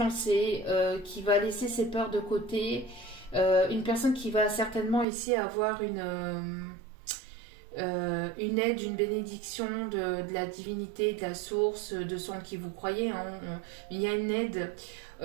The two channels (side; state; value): left; drops out; at 5.1 s